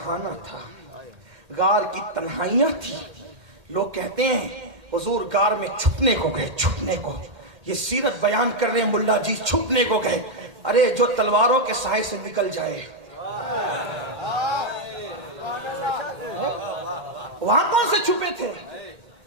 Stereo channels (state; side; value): late; left; 2.1 ms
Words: تھا، غار کی تنہائیاں تھی۔ لوگ کہتے ہیں حضور غار میں چھپنے کو گئے، چھپنے کو، یہ سیرت بیان کر رہے ہیں ملا جی، چھپنے کو گئے۔ ارے جو تلواروں کے سائے سے نکل جائے، وہاں کون سے چھپے تھے؟